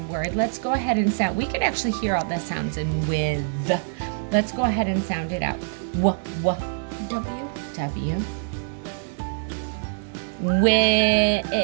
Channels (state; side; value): silent; left; 62 dB below the other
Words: word. Let's go ahead and sound. We can actually hear all the sounds in with. Let's go ahead and sound it out. W, W. W. With